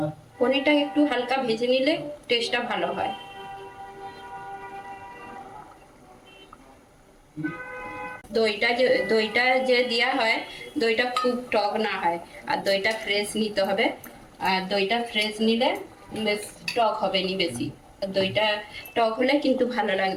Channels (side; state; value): both; identical; correlation 1.00